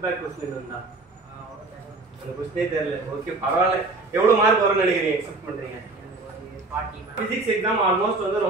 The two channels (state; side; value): quieter; left; 3.4 dB